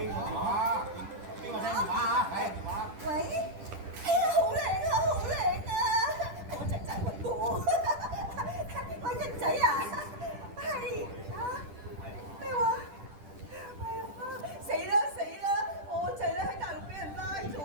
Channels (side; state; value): left; late; 10 ms